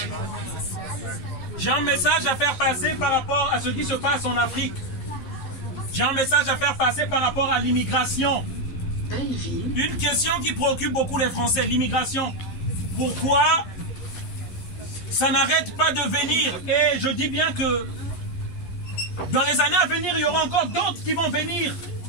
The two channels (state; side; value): late; right; 11 ms